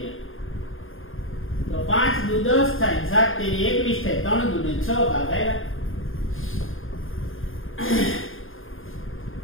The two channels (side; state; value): right; late; 0.59 ms